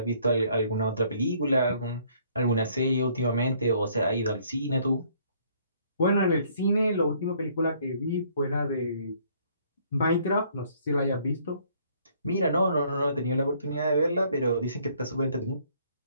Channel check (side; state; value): both; inverted; correlation -0.63